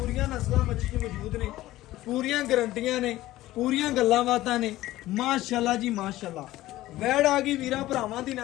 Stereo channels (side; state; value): right; quieter; 16.0 dB